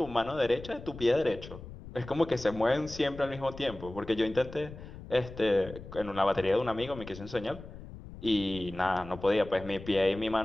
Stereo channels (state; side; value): noise; left; rumble, 14 dB below the sound